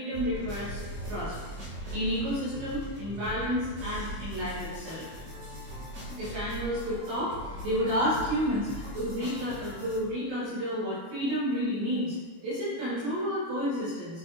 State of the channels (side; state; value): left; late; 25 ms